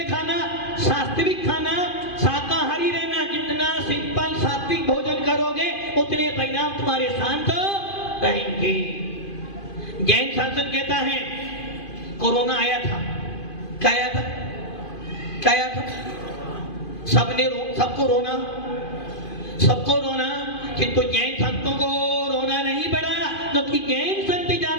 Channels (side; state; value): right; late; 2.5 ms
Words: खाना, सात्विक खाना, शाकाहारी रहना। जितना सिंपल सात्विक भोजन करोगे उतने परिणाम तुम्हारे शांत रहेंगे। जैन शासन कहता है कोरोना आया था, क्या आया था, क्या आया था, सबको रोना, सबको रोना, किंतु जैन संतों को रोना नहीं पड़ा, क्योंकि जैन संत